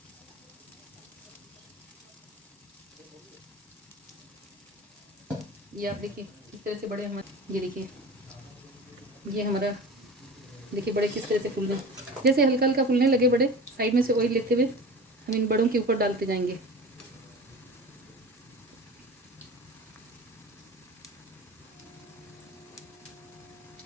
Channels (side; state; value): both; normal; correlation 0.35